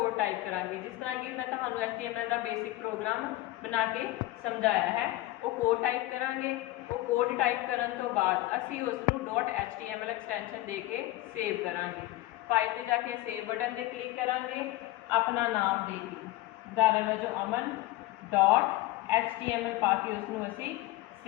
टाइप करांगे। जिस तरह कि मैं तुहानू HTML का बेसिक प्रोग्राम बना के समझाया है, वो कोड टाइप करांगे। वो कोड टाइप करन तो बाद असी उसनू .html एक्सटेंशन दे के सेव करांगे। फाइल ते जाके सेव बटन ते क्लिक करांगे, अपना नाम दे के उदाहरण वजों अमन .html पा के उसनू असी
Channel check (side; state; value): right; quieter; 17.4 dB